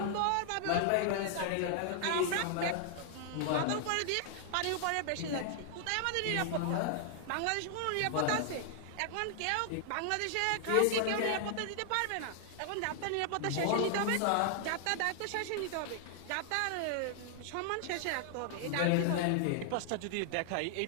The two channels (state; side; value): different; both; correlation 0.00